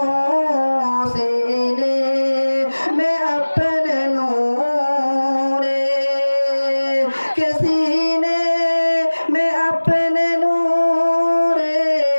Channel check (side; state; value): both; inverted; correlation -1.00